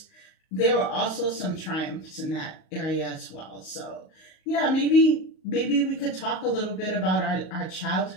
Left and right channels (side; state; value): right; late; 38 ms